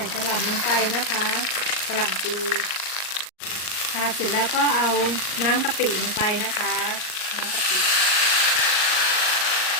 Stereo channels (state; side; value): late; right; 38 ms